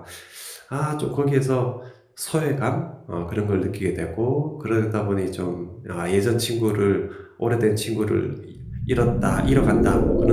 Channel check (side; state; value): both; identical; correlation 1.00